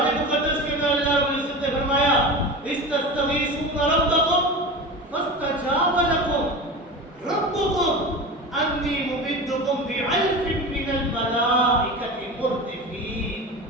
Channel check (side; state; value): both; normal; correlation 0.29